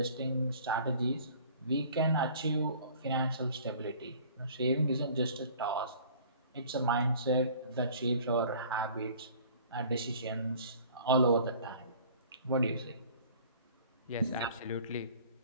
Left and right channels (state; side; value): inverted; both; correlation -0.49